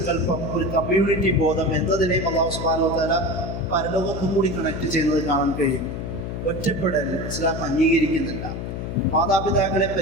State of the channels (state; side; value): noise; left; hum, 5 dB below the sound